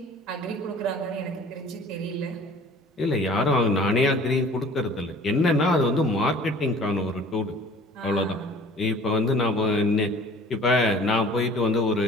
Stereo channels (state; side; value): normal; both; correlation 0.48